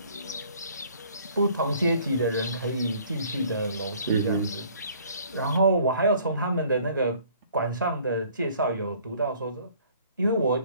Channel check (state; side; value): inverted; both; correlation -0.56